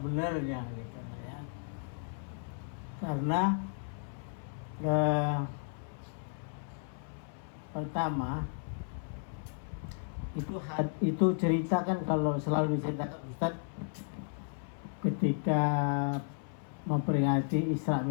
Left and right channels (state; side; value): silent; right; 55 dB below the other